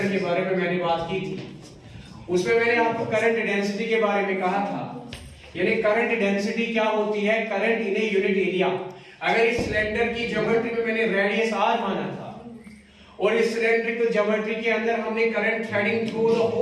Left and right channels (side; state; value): both; identical; correlation 1.00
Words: के बारे में मैंने बात की थी, उसमें मैंने आपको करंट डेंसिटी के बारे में कहा था। यानी करंट डेंसिटी क्या होती है, current in a unit area. अगर इस सिलेंडर की ज्योमेट्री में मैंने रेडियस r माना था और इस सिलेंड्रिकल ज्योमेट्री के अंदर हमने current threading through the